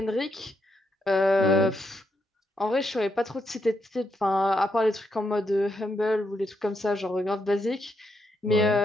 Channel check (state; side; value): normal; both; correlation 0.80